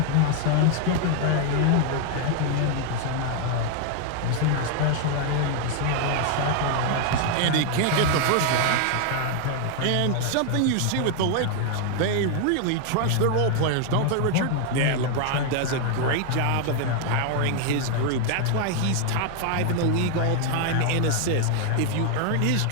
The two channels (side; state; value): both; different; correlation 0.00